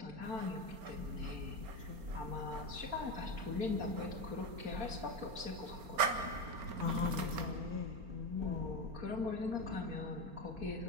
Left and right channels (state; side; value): late; left; 4.3 ms